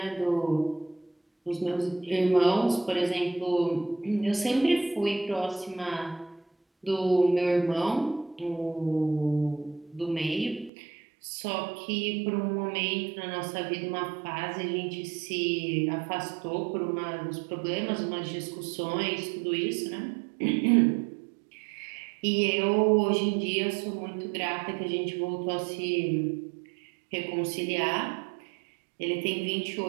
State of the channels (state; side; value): drops out; left; at 10.7 s